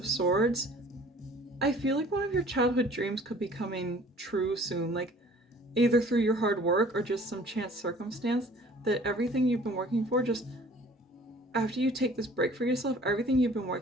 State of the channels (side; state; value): both; normal; correlation 0.51